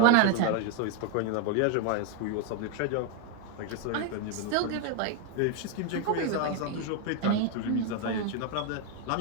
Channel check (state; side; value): different; both; correlation 0.01